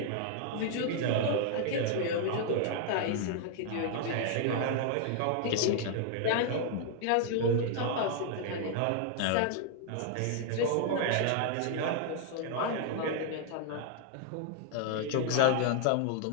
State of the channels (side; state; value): both; different; correlation 0.00